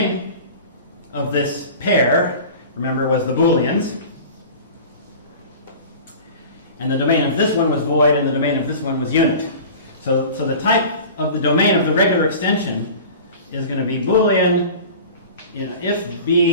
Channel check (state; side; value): inverted; both; correlation -0.38